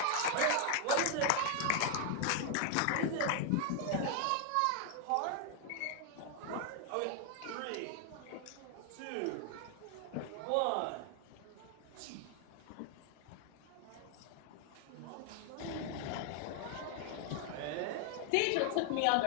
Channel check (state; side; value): different; both; correlation 0.00